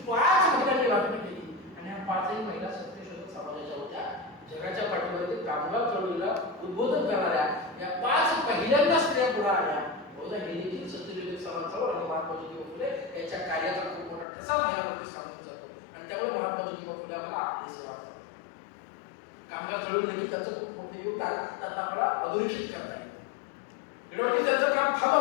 5 महिलांनी भाषण केली आणि ह्या 5ही महिला सत्यशोधक समाजाच्या होत्या. जगाच्या पाठीवर कामगार चळवळीला उद्बोधन करणाऱ्या या 5 पहिल्यांदा स्त्रिया पुढे आल्या. बहुधा हे देखील सत्यशोधक समाजावर आणि महात्मा ज्योतिबा फुले यांच्या कार्याचा खूप मोठा ठसा महिलांमध्ये सांगून जातो आणि त्यामुळे महात्मा ज्योतिबा फुले आम्हाला आपले सेवा कामगार चळवळीनिमित्त त्यांचं खूप मोठे योगदान त्यात आपल्याला अधोरेखित करता येतं. एवढं त्यांचं काम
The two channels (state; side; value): drops out; right; at 14.2 s